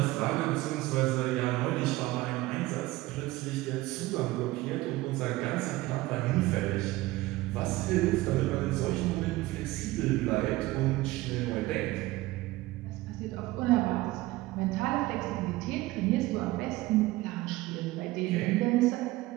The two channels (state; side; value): quieter; left; 18.7 dB